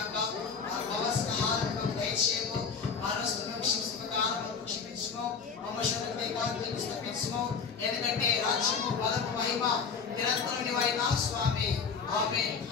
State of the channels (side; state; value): right; quieter; 5.8 dB